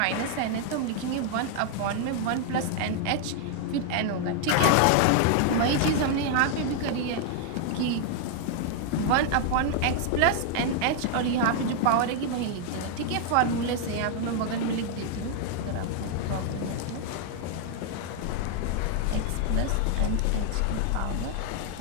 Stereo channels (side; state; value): both; different; correlation 0.00